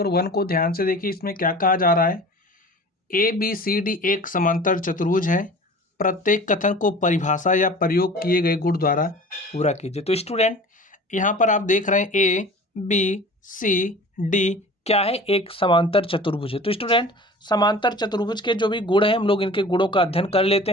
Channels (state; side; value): normal; both; correlation 0.41